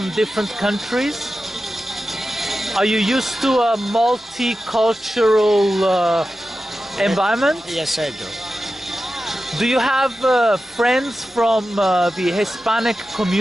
different countries? Are you used to a multicultural environment? Yes, I do. Do you have friends from the Hispanic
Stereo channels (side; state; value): both; normal; correlation 0.93